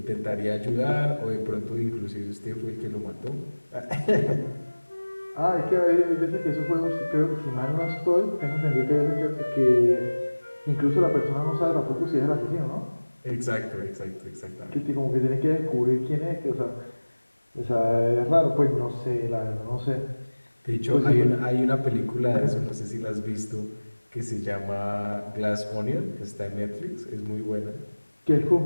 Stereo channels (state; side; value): inverted; both; correlation -1.00